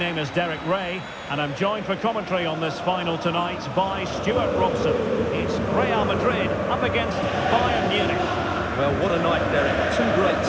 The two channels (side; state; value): both; identical; correlation 1.00